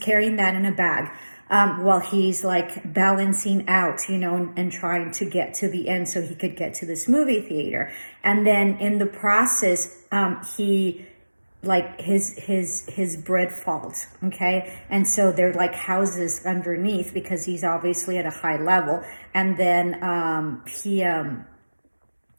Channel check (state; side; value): inverted; both; correlation -1.00